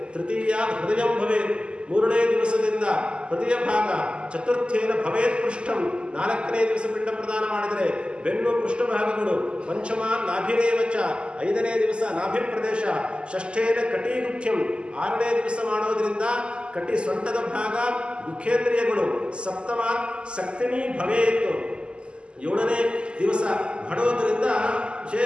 ತೃತೀಯ ಹೃದಯಂ ಭವೇತ್ 3ನೇ ದಿವಸದಿಂದ ಹೃದಯ ಭಾಗ. ಚತುರ್ಥೇನ ಭವೇತ್ ಪೃಷ್ಠಂ 4ನೇ ದಿವಸ ಪಿಂಡ ಪ್ರದಾನ ಮಾಡಿದರೆ ಬೆನ್ನು ಪೃಷ್ಠಭಾಗಗಳು. ಪಂಚಮ ನಾಭಿರೇವಚ 5ನೇ ದಿವಸ ನಾಭಿ ಪ್ರದೇಶ. ಷಷ್ಠೇನ ಕಟೀಗುಖ್ಯಂ 6ನೇ ದಿವಸ ಮಾಡೋದ್ರಿಂದ ಕಟಿ ಸೊಂಟದ ಭಾಗ ಮುಖೇಂದ್ರಿಯಗಳು. ಸಪ್ತಮ ಸಕ್ತಿನಿ ಭವೇತ್ 7ನೇ ದಿವಸ ಮಾಡೋದ್ರಿಂದ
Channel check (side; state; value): left; late; 0.051 ms